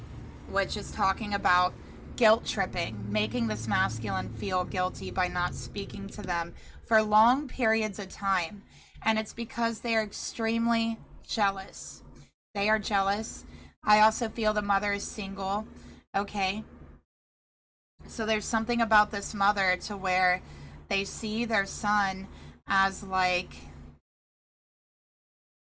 which is talking about guilt tripping, making this masculine feel guilty by not speaking to them for long periods of time. And it's because they are extremely jealous. They are jealous. I also feel the mother is single. Okay. So there's something about this mother to where they see their son as like,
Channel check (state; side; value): identical; both; correlation 1.00